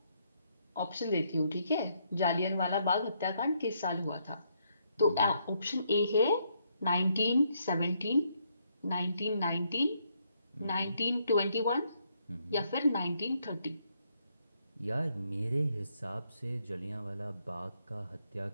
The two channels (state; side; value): inverted; both; correlation -0.73